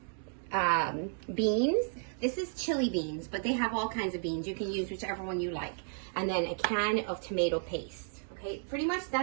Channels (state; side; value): silent; left; digital silence